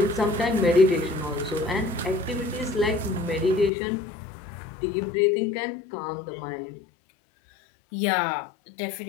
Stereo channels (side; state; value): right; drops out; at 3.7 s